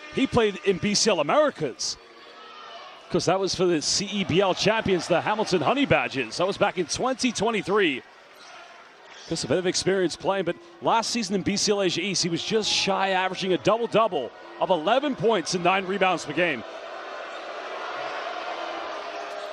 He played in BCL Americas, because that was for the CEBL champions, the Hamilton Honey Badgers. That was back in 2023. Just a bit of experience playing, but last season in BCL Asia East, he was just shy, averaging a double-double of 11 points and 9 rebounds per game.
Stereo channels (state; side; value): identical; both; correlation 1.00